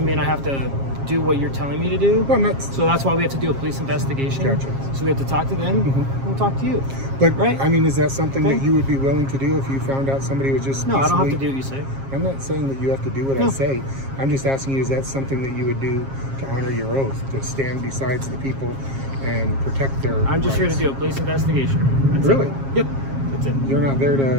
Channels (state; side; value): late; left; 7.4 ms